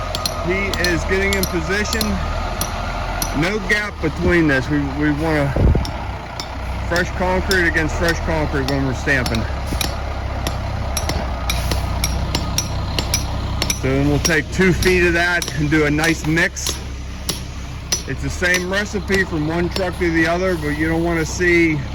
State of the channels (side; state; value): both; identical; correlation 1.00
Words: He is getting in position. No gap between this. We want to fresh concrete against fresh concrete when we're stamping. So then we'll take 2 feet of that and do a nice mix. It's the same recipe from one truck to the other, but you don't want to see